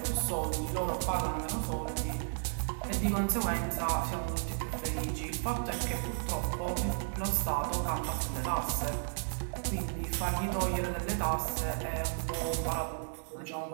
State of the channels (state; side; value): silent; left; digital silence